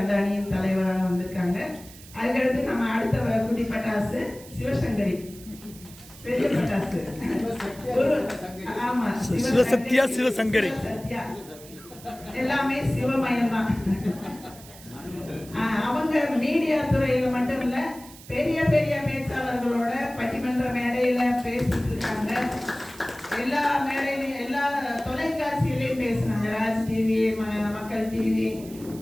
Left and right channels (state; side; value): noise; right; hiss, 19 dB below the sound